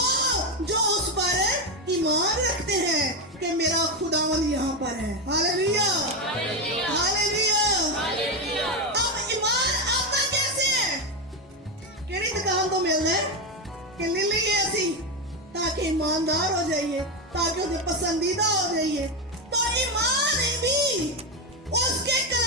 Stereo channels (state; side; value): normal; both; correlation 0.11